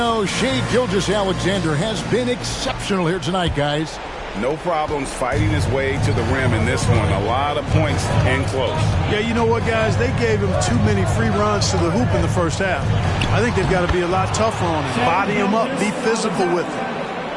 Shai Gilgeous-Alexander has been exceptional here tonight, guys. No problems fighting his way to the rim in this one. A lot of points and close. Yeah, you know what, guys? They gave him too many free runs to the hoop in the first half. I think they've got to be a lot tougher on him. Body him up, be physical with him.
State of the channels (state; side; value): identical; both; correlation 1.00